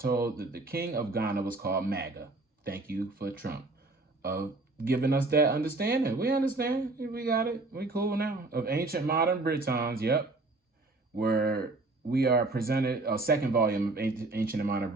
that the king of Ghana was called Maga. Thank you for Trump. Giving us that understanding. We understand. We got it. We cool now. Of ancient modern Britons, yep. Where we are presented, a second volume of Ancient and Modern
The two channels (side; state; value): left; quieter; 3.2 dB